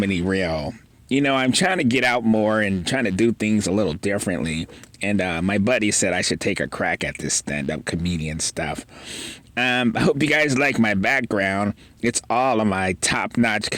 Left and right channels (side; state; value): both; identical; correlation 1.00